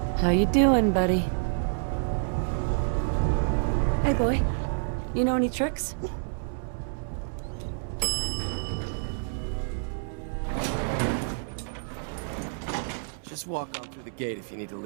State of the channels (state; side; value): silent; left; 59 dB below the other